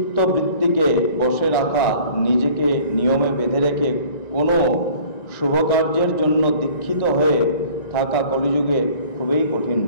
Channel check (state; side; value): late; right; 1.9 ms